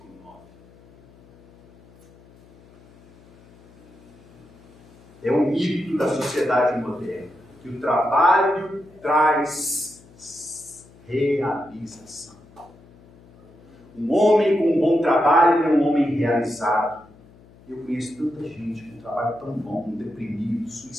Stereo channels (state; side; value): noise; left; hum, 26 dB below the sound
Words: É um mito da sociedade moderna, que o trabalho traz realização. Um homem com um bom trabalho é um homem realizado. Eu conheço tanta gente com um trabalho tão bom, deprimido,